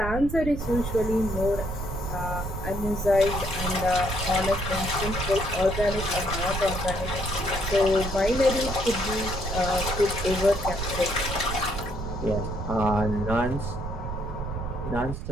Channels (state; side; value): noise; right; rumble, 5 dB below the sound